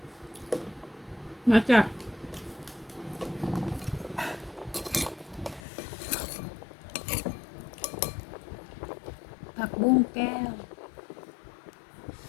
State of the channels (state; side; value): drops out; right; at 5.6 s